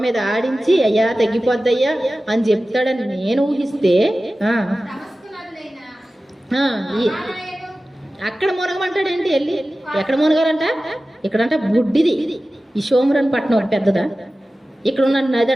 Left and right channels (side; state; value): both; normal; correlation 0.95